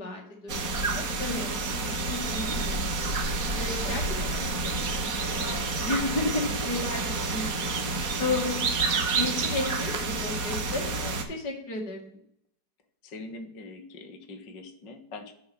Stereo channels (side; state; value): right; late; 4.3 ms